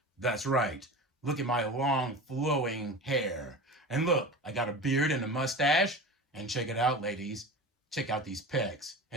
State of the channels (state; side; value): normal; both; correlation 0.32